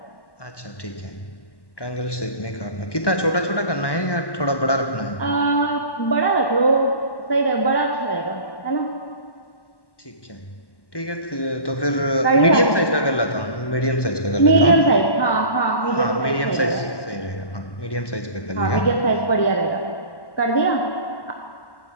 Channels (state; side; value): late; right; 1.1 ms